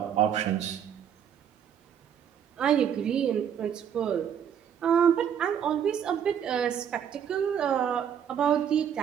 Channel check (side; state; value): left; quieter; 8.6 dB